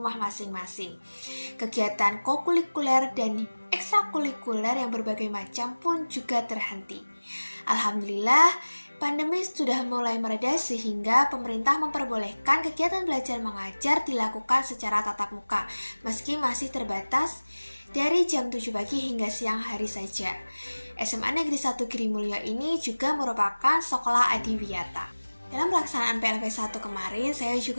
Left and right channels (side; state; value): both; inverted; correlation -1.00